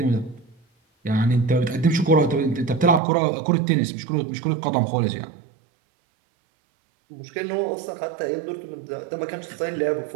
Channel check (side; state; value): left; drops out; at 3.0 s